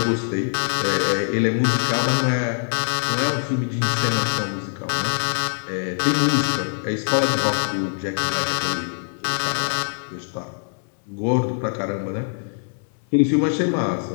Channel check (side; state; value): right; silent; 63 dB below the other